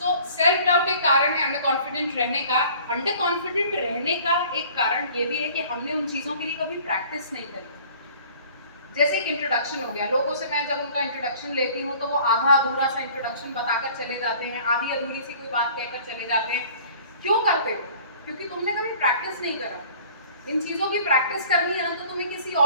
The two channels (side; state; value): both; inverted; correlation -0.50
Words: self doubt एक कारण है अंडर कॉन्फिडेंट रहने का। अंडर कॉन्फिडेंट रहने का एक कारण ये भी है कि हमने उन चीज़ों के लिए कभी प्रैक्टिस नहीं करी। जैसे एक इंट्रोडक्शन हो गया, लोगों से मैं जब उनका इंट्रोडक्शन लेती हूँ तो वो आधा अधूरा सा इंट्रोडक्शन बताकर चले जाते हैं, आधी अधूरी सी कोई बात कहकर चले जाते हैं। क्यों करते हो? क्योंकि तुमने कभी प्रैक्टिस नहीं करा। इन चीज़ों की प्रैक्टिस करनी है ना, तो तुम्हें किसी